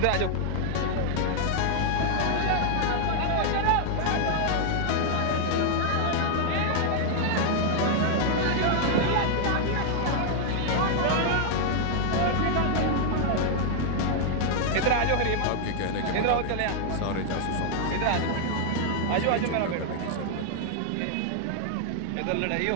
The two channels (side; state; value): both; different; correlation 0.00